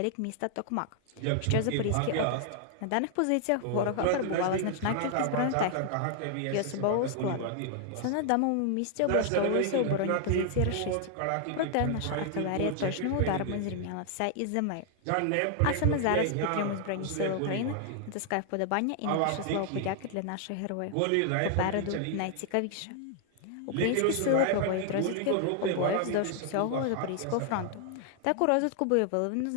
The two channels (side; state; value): both; different; correlation 0.00